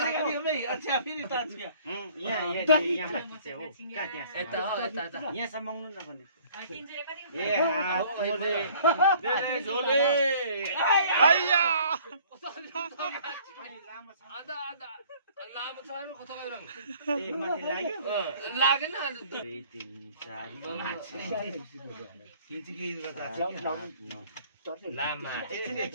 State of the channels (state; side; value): inverted; both; correlation -0.55